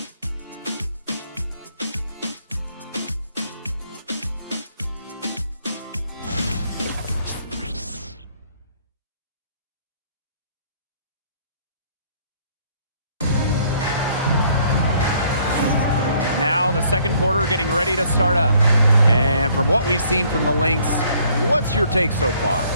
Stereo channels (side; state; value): both; inverted; correlation -0.63